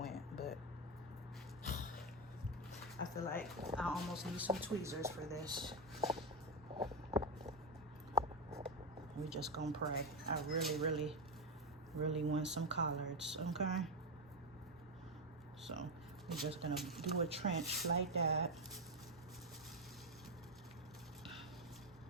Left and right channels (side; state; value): both; normal; correlation 0.09